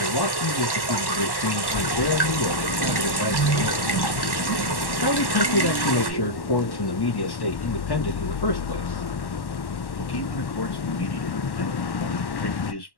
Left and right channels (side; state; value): right; late; 1.1 ms